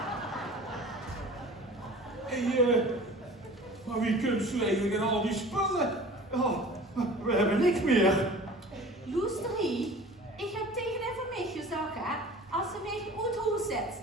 Maar wie kunt u eigenlijk in al die spullen? Ja, we hebben niks meer. Loesterie, ik heb tegen de van mij gezegd, hè, als ze mij uit huis zet,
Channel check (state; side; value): normal; both; correlation 0.42